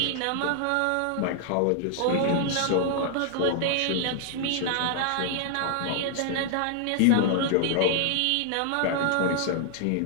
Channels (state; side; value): different; both; correlation 0.00